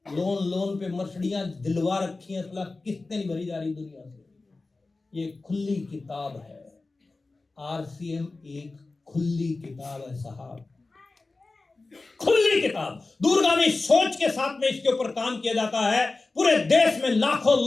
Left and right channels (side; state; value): right; quieter; 3.5 dB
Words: लोन पे मर्सिडीज दिलवा रखी हैं, किस्तें नहीं भरी जा रही दुनिया से। ये खुली किताब है, आरसीएम एक खुली किताब है साहब, खुली किताब। दूरगामी सोच के साथ में इसके ऊपर काम किया जाता है। पूरे देश में लाखों